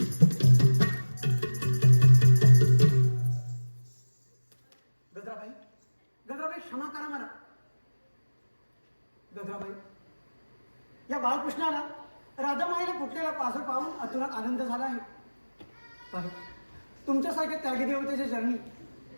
गजराबाई गजराबाई क्षमा करा मला. गजराबाई या बाळकृष्णाला राधामाईला फुटलेला पासर पाहून अतुरात आनंद झाला आहे. पाहे तुमच्यासारख्या त्यागी देवतेच्या चरणी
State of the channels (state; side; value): inverted; both; correlation -1.00